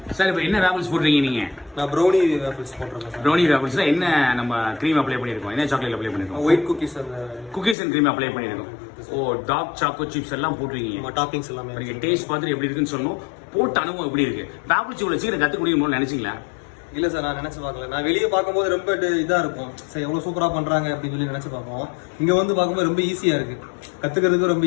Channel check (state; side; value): drops out; right; at 7.8 s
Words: சார் இப்போ என்ன வேஃபிள்ஸ் போடுறீங்க நீங்கள்? நான் ப்ரௌனி வேஃபிள்ஸ் போடுறேன். ப்ரௌனி வேஃபிள்ஸில் என்ன நம்ம க்ரீம் அப்ளை பண்ணியிருக்கோம்? என்ன சாக்லேட் அப்ளை பண்ணியிருக்கோம்? White cookies and cream apply பண்ணியிருக்கோம். ஓ, டார்க் சாக்கோ சிப்ஸ் எல்லாம் போட்டிருக்கீங்க. டாப்பிங்ஸ் எல்லாமே நீங்கள் டேஸ்ட் பார்த்துட்டு எப்படி இருக்குன்னு சொல்லணும். போட்ட அனுபவம் எப்படி இருக்குது? வேஃபிள்ஸ் இவ்வளோ சீக்கிரம் கற்றுக்க முடியுமோ நினச்சிங்களா? இல்லை சார், நான் நினச்சி பார்க்கல. நான் வெளியே பார்க்கும்போது ரொம்ப இதாக இருக்கும் சார், எவ்வளோ சூப்பராக பண்ணுறாங்க அப்படின்னு சொல்லி நினச்சி பார்ப்போம். இங்கே வந்து பார்க்கும்போது ரொம்ப ஈஸியாக இருக்குது, கற்றுக்கிறதுக்கு ரொம்ப